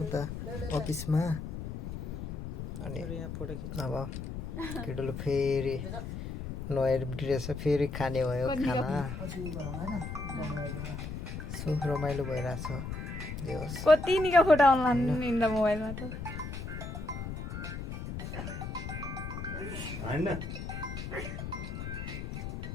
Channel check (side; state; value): left; noise; rumble, 6 dB below the sound